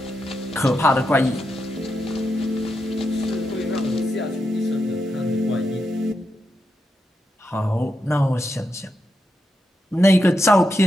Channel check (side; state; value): both; normal; correlation 0.85